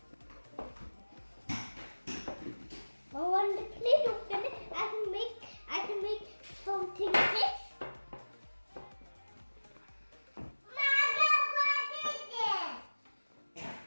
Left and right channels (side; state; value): both; inverted; correlation -1.00